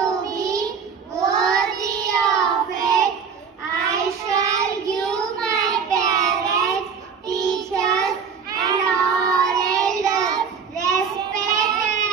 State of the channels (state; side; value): quieter; left; 6.2 dB